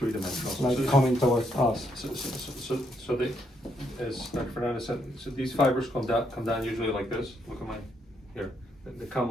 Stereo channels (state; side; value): normal; both; correlation 0.75